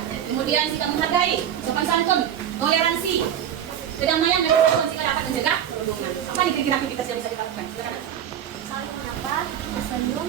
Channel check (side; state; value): left; quieter; 9.8 dB